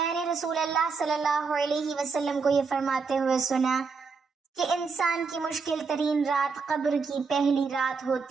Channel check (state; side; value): quieter; left; 4.9 dB